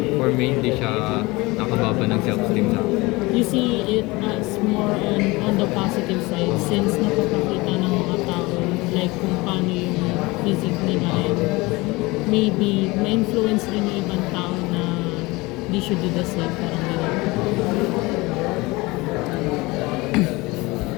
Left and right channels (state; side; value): quieter; right; 22.7 dB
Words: for me, hindi siya nakababa ng self-esteem sa akin. You see it as more on the positive side since napapakita ng mga tao like kung paano yung physique nila and maybe ma-influence rin yung ibang tao na they should do the same, parang gano'n.